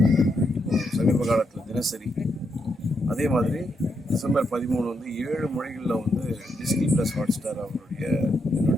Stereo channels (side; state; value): both; normal; correlation 0.80